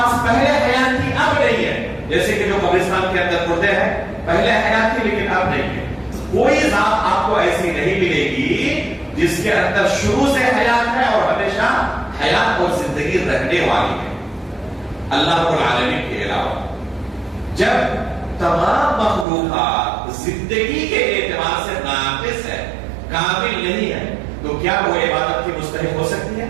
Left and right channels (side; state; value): left; drops out; at 19.2 s